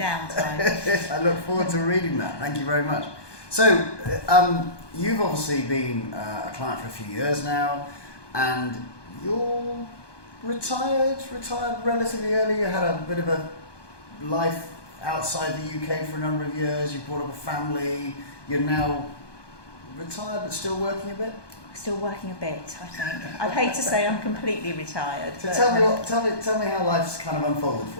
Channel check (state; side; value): late; right; 1.2 ms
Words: I look forward to reading that. Thank you very much. So, you've obviously been a client for a few years now, and you're retired relatively early. You had a bit of a life outside the UK for a number of years. You brought up a family. You're now retired but still working a bit? Still working a bit, I think. I'd hate to say I'm completely retired. So tell me how life's kind of unfolded for